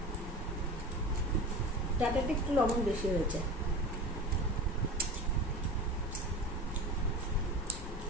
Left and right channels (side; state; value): both; normal; correlation 0.32